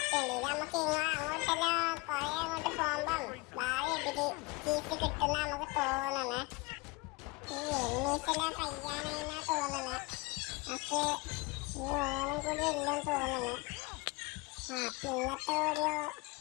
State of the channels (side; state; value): right; quieter; 24.5 dB